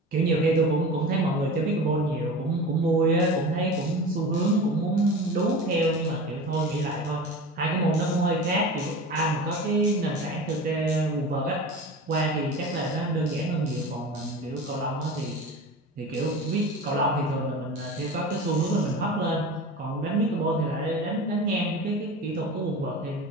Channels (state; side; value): normal; both; correlation 0.32